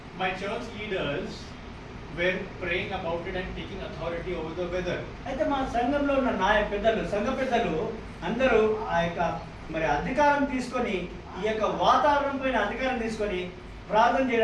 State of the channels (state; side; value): identical; both; correlation 1.00